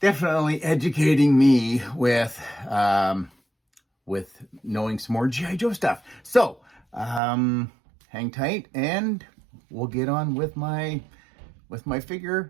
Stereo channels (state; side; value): drops out; left; at 7.2 s